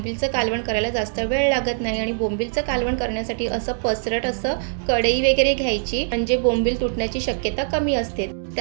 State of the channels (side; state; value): left; silent; digital silence